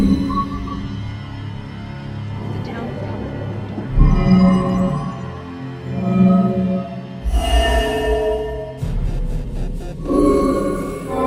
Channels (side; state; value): both; identical; correlation 1.00